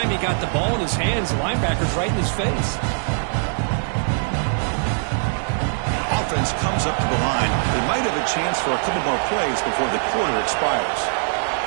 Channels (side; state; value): left; silent; 64 dB below the other